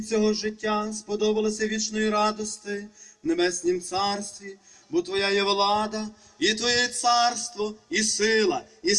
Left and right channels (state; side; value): identical; both; correlation 1.00